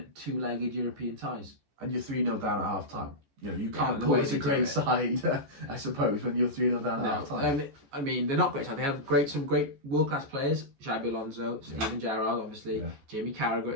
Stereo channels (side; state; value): left; late; 14 ms